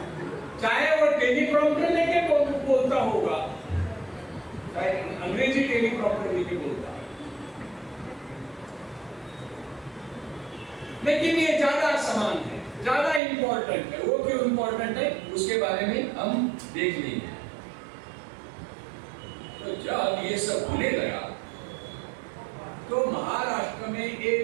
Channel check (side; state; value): left; drops out; at 13.2 s